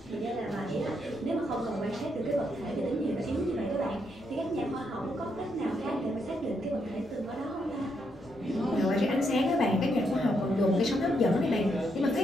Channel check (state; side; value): normal; both; correlation 0.78